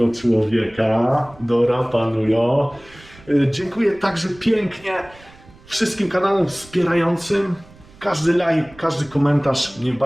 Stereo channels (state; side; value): noise; right; rumble, 24 dB below the sound